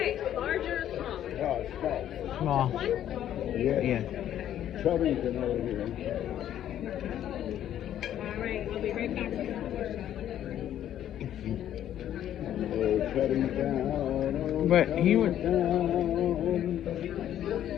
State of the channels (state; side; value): quieter; right; 11.1 dB